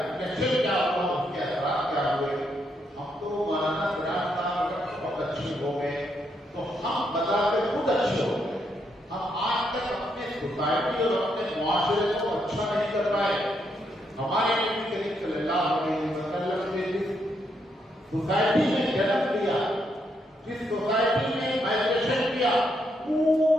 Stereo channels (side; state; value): both; normal; correlation 0.77